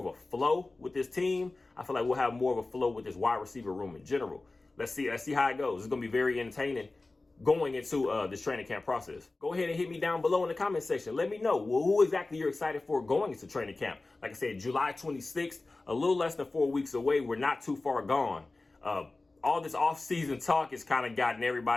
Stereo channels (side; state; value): right; quieter; 3.2 dB